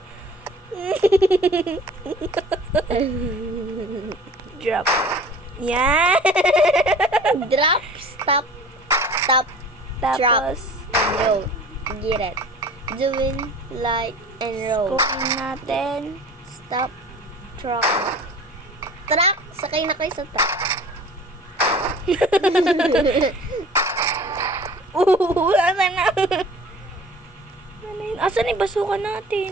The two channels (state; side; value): normal; both; correlation 0.44